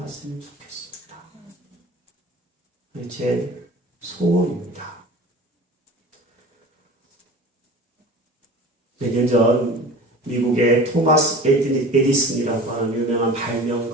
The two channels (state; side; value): normal; both; correlation 0.38